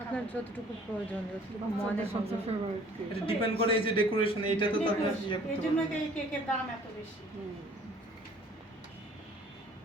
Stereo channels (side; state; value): both; normal; correlation 0.54